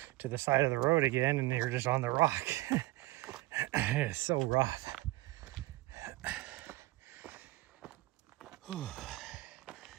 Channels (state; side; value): quieter; left; 19.3 dB